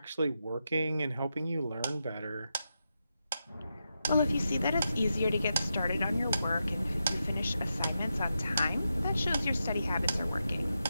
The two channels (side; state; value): both; inverted; correlation -0.87